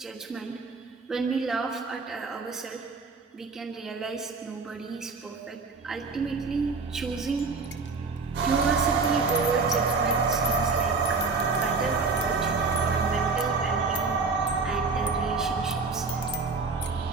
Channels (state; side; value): quieter; left; 4.3 dB